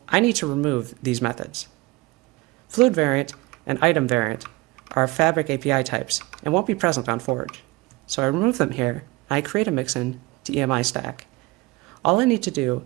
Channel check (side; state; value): left; quieter; 22.5 dB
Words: I need to remove these methods. Fluid variant and item variant are Fabric API types and won't be present on Forge. So I remove them here, and I create a Mixin to EMI stack. All I need to do